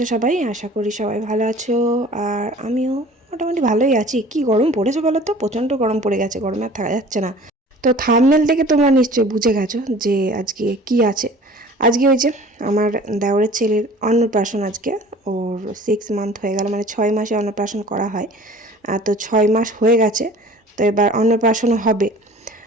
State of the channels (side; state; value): both; normal; correlation 0.46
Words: সবাই? আশা করি সবাই ভালো আছো। আর আমিও মোটামুটি ভালোই আছি। কি গরম পড়েছে বলো তো, প্রচণ্ড গরম পড়ে গেছে, গরমে আর থাকা যাচ্ছে না। তো থাম্বনেল থেকে তোমরা নিশ্চয়ই বুঝে গেছো যে আজকে কি আছে। আজকে ওই যে আমার দেওরের ছেলের অন্নপ্রাশন। আজকে ওর 6 মান্থ হয়ে গেল, মানে 6 মাসে অন্নপ্রাশন করা হয়। তো 6 মাস হয়ে গেছে, তো এবার অন্নপ্রাশনও হবে।